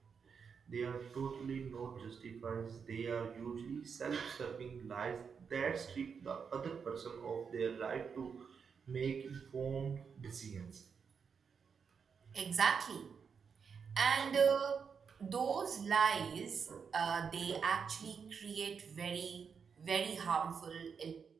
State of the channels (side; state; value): left; quieter; 6.2 dB